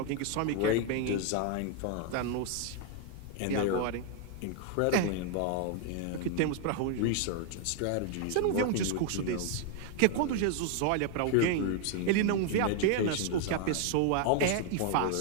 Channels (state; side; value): different; both; correlation 0.01